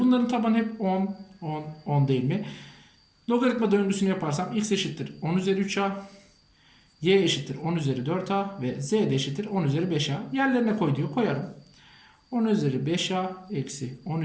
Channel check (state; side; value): identical; both; correlation 1.00